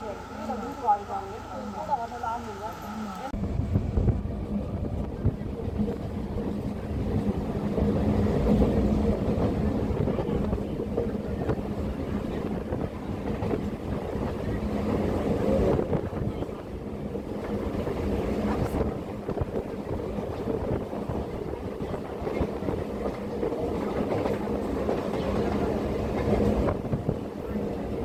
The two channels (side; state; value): both; identical; correlation 1.00